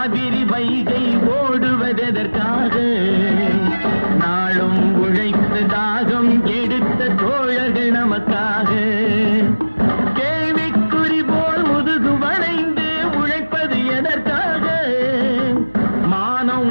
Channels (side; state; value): both; inverted; correlation -1.00